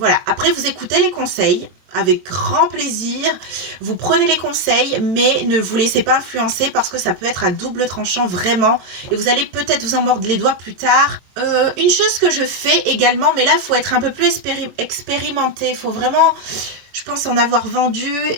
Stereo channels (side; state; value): left; late; 22 ms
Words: Après, vous écoutez les conseils avec grand plaisir, vous prenez les conseils, mais ne vous laissez pas influencer parce que ça peut être à double tranchant vraiment et vous allez peut-être vous en mordre les doigts plus tard. Une chose que je fais également, mais là il faut être un peu plus expérimenté, il faut vraiment, je Je pense en avoir vendu